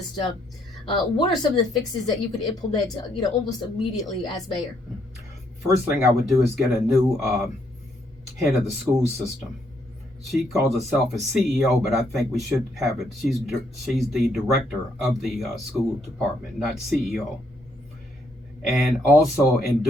what are some of the fixes that you could implement, almost immediately as mayor? First thing I would do is get a new head of the school system. She calls herself a CEO, but I think we should have it. She's the director of the school department, not CEO. And also in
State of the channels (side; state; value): both; normal; correlation 0.72